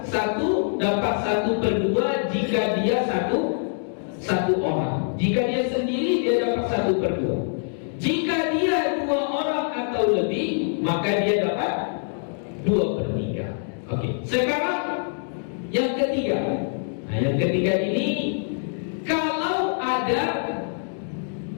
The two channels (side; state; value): right; silent; digital silence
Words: 1 dapat 1/2 jika dia satu orang. Jika dia sendiri dia dapat 1/2. Jika dia 2 orang atau lebih, maka dia dapat 2/3. Oke. Sekarang yang ketiga. Nah, yang ketiga ini kalau ada